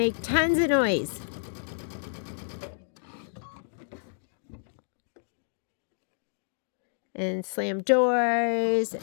tons of noise. And slam doors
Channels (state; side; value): silent; right; digital silence